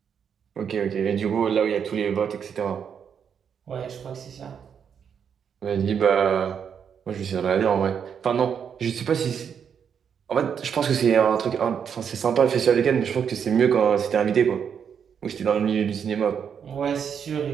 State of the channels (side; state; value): left; quieter; 7.5 dB